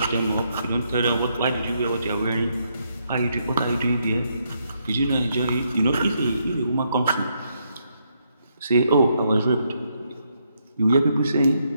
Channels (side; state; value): both; inverted; correlation -0.77